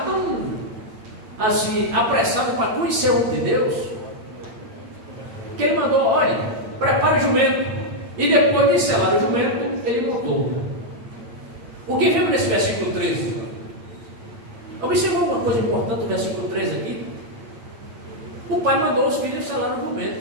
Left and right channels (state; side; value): late; left; 8.8 ms